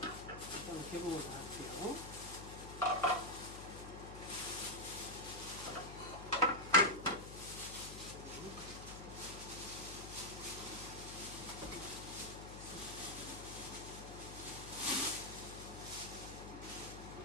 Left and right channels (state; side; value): noise; left; hum, 11 dB below the sound